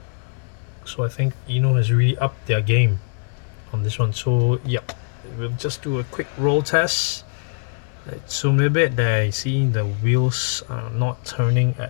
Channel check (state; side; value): silent; right; 62 dB below the other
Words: So I think INNO has really upped their game on this one. So yep, we'll just do a quick roll test. Let's zoom a bit. There you see the wheels are not turning